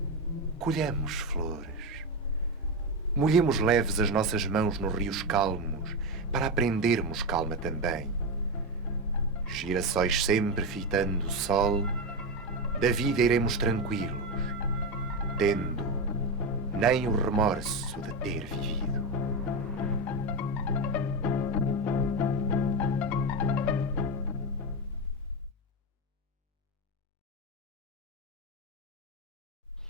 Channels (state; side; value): normal; both; correlation 0.13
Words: Colhamos flores. Molhemos leves as nossas mãos nos rios calmos para aprendermos calma também. Girassóis sempre fitando o sol, da vida iremos tranquilos, tendo nem o remorso de ter vivido.